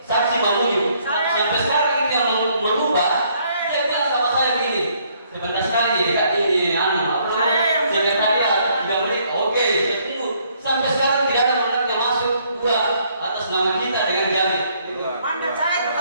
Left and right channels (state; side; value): inverted; both; correlation -0.67